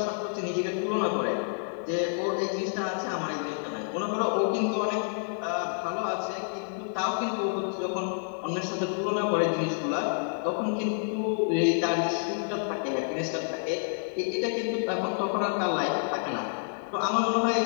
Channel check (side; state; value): right; silent; digital silence